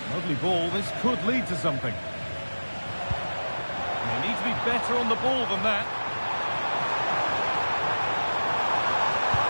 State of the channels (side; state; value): both; inverted; correlation -1.00